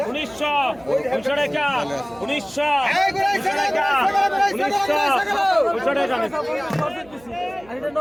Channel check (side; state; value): right; noise; hum, 24 dB below the sound